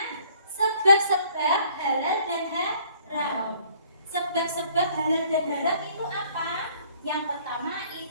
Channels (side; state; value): both; inverted; correlation -0.59